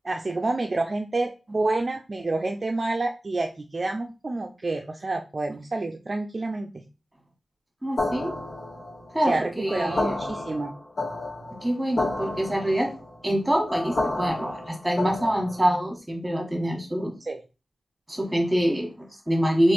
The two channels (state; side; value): normal; both; correlation 0.96